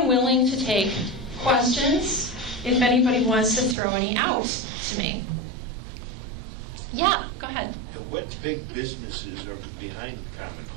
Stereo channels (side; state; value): left; drops out; at 3.8 s